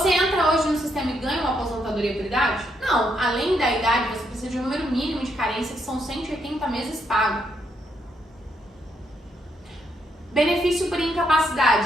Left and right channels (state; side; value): normal; both; correlation 0.76